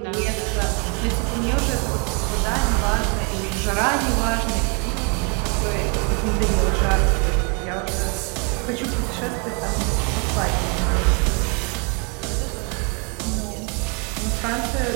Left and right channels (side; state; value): left; quieter; 34.9 dB